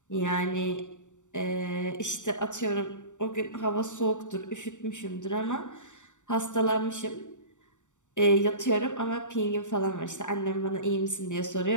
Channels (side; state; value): right; late; 0.85 ms